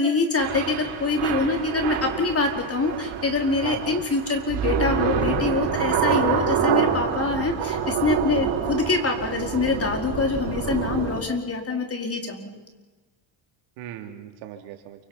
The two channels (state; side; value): normal; both; correlation 0.08